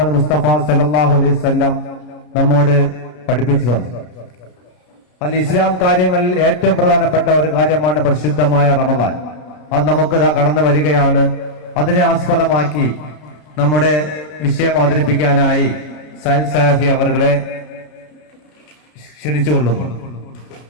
മുസ്തഫ സല്ലല്ലാഹു അലൈഹി വസല്ലം നമ്മോട് പഠിപ്പിച്ചു തന്നു. അതിൽ ഇസ്ലാം കാര്യങ്ങളിൽ ഏറ്റവും പ്രധാനപ്പെട്ട ഒരു കാര്യമാണ് പരിശുദ്ധമായ റമദാൻ. അത് നമുക്ക് കടന്നു വരികയാണ്. അതിനെ ആസ്പദമാക്കി നമ്മുടെ വിഷയം അവതരിപ്പിക്കാനായി സൈൽ സലാഫി അവരുടെ ക്ഷണിച്ചുകൊള്ളുന്നു.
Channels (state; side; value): late; right; 33 ms